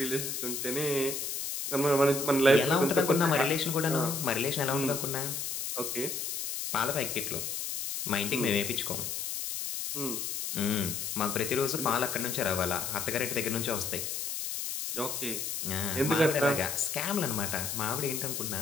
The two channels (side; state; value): left; noise; hiss, 4 dB below the sound